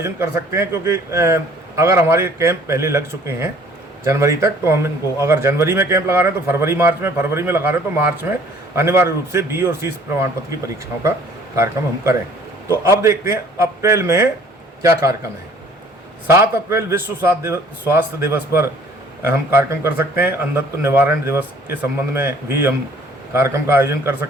कर सकते हैं। क्योंकि अगर हमारे कैंप पहले लग चुके हैं जनवरी तक, तो हम इनको अगर जनवरी में कैंप लगा रहे हैं तो फरवरी में लगा रहे हैं तो मार्च में अनिवार्य रूप से बी और सी प्रमाण पत्र की परीक्षाओं का कार्यक्रम हम करें। तो अब देखते हैं अप्रैल में क्या कार्यक्रम है। 7 अप्रैल विश्व स्वास्थ्य दिवस पर हम कार्यक्रम कर सकते हैं। अंधत्व निवारण दिवस के संबंध में भी हम कार्यक्रम का आयोजन कर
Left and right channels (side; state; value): both; normal; correlation 0.55